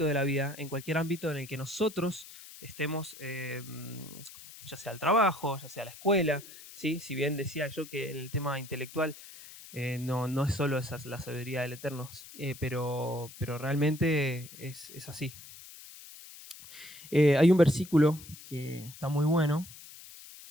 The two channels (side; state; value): left; noise; hiss, 17 dB below the sound